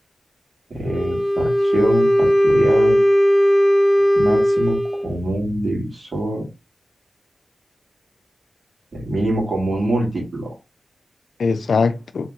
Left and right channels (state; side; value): normal; both; correlation 0.96